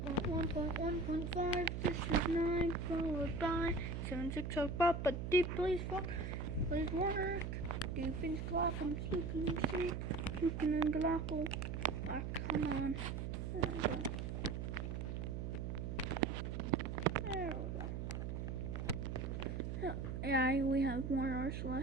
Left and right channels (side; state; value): right; noise; hum, 3 dB below the sound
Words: 1.1.5, this is 9, followed by 7, 6, so Papa deep, please work. Deepens glock'em, sleeping sleep, puking and glockle. Ah, come on. There we go. Yeah, we have more